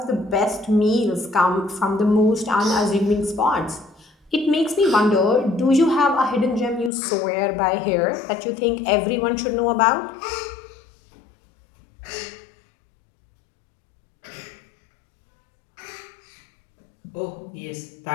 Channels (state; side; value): drops out; right; at 6.9 s